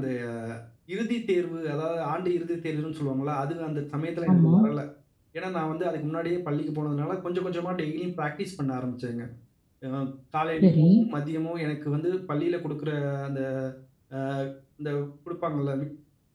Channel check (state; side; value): identical; both; correlation 1.00